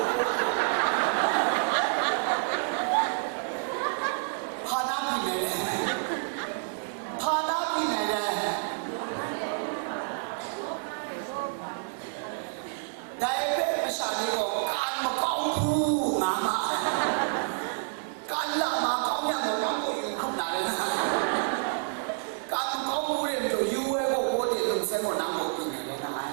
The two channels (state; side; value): silent; left; digital silence